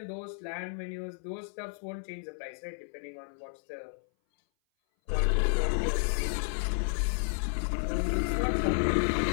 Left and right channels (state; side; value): silent; right; 57 dB below the other